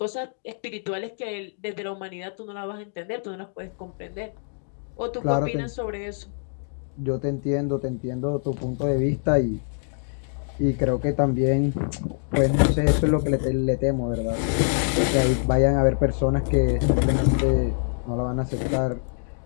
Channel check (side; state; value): right; silent; digital silence